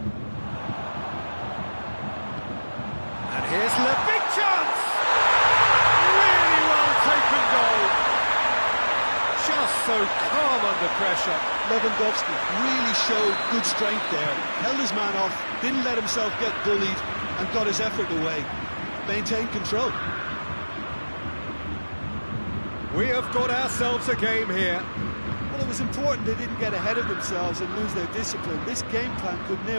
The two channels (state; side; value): inverted; both; correlation -1.00